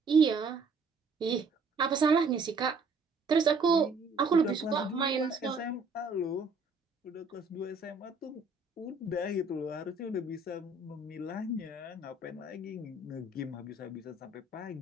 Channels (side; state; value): left; quieter; 3.7 dB